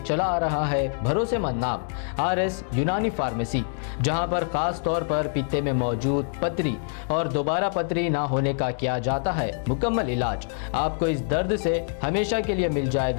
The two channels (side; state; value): right; silent; digital silence